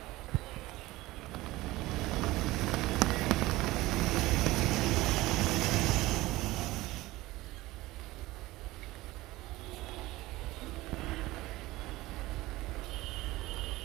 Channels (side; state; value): left; quieter; 18.7 dB